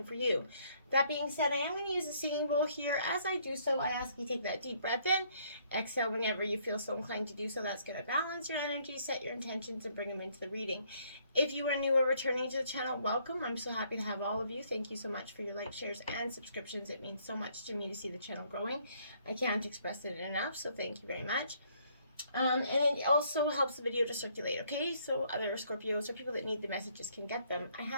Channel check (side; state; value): both; inverted; correlation -0.66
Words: for you. That being said, I am going to use a singing bowl here. As I do so, I ask you take that deep breath in. Exhale whenever you feel so inclined to do so. That's going to balance your energy, set your intentions, and bring them into the reading. If you are new or returning to the channel, welcome. I'm so happy to have all of you. Thank you so much for your likes, shares, and subscriptions. It means so much to me to see the channel growing. I can't express it enough, so thank you very much. And it also helps the video to circulate, okay? So other Scorpios or people that need the messages can get them. I